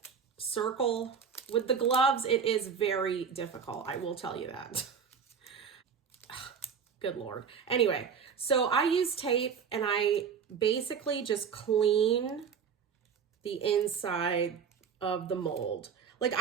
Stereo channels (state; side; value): quieter; left; 6.7 dB